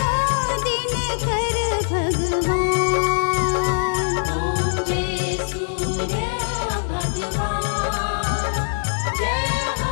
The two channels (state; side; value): silent; right; 62 dB below the other